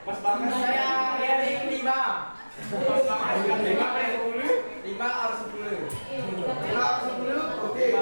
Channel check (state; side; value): inverted; both; correlation -1.00